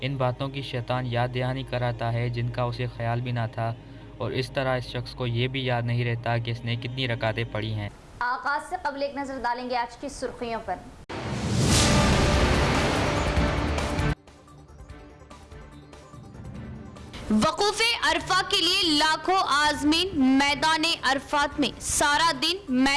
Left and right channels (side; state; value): both; identical; correlation 1.00